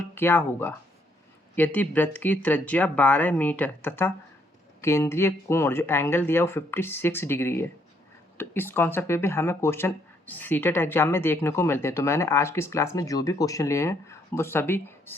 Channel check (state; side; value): normal; both; correlation 0.70